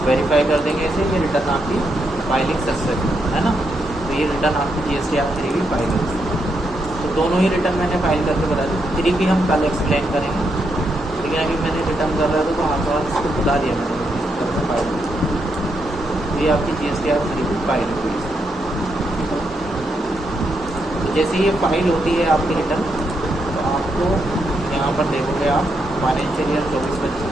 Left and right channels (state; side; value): normal; both; correlation 0.80